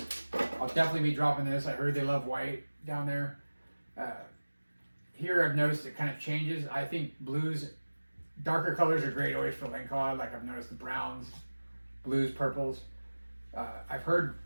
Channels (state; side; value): inverted; both; correlation -1.00